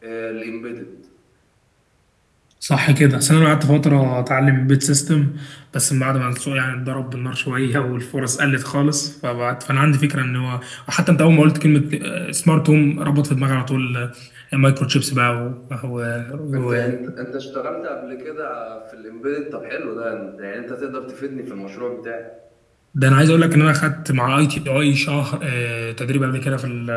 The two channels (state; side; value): identical; both; correlation 1.00